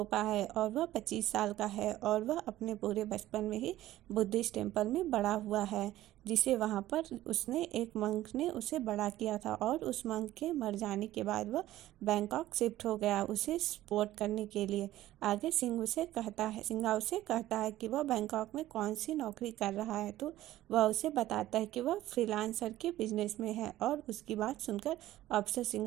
है और वह 25 साल का है और वह अपने पूरे बचपन में ही बुद्धिस्ट टेम्पल में बड़ा हुआ है, जिसे वहाँ पर उसने एक मंक ने उसे बड़ा किया था। और उस मंक के मर जाने के बाद वह बैंकॉक शिफ्ट हो गया उसे सपोर्ट करने के लिए। आगे सिंघा उसे कहता है कि वह बैंकॉक में कौन सी नौकरी कर रहा है, तो वह उसे बताता है कि वह फ्रीलांसर के बिजनेस में है। और उसकी बात सुनकर अफसर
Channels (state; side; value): quieter; left; 14.8 dB